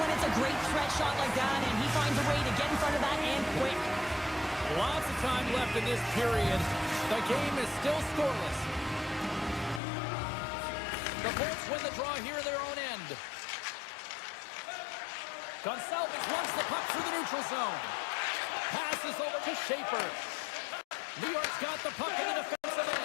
it's a great threat shot like that, and he finds a way to get in front of that and quick. Lots of time left in this period. The game is still scoreless. The Bolts win the draw here in their own end. Gonçalves runs the puck through the neutral zone. Passes over to Schaefer. New York's got the puck in the defensive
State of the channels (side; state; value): right; drops out; at 9.8 s